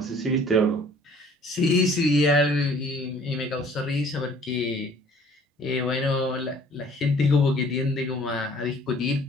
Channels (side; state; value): both; normal; correlation 0.54